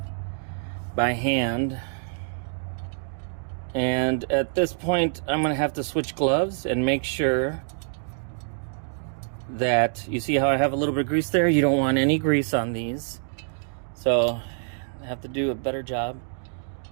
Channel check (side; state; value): left; silent; digital silence